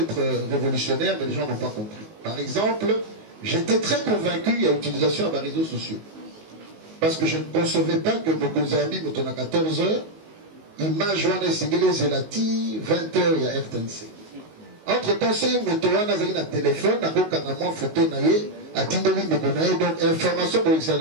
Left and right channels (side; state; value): left; late; 19 ms